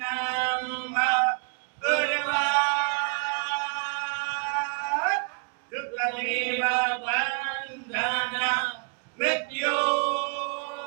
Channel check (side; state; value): left; quieter; 36.3 dB